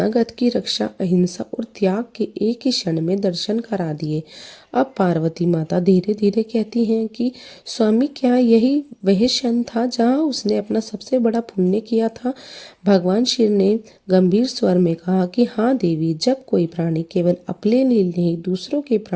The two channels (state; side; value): identical; both; correlation 1.00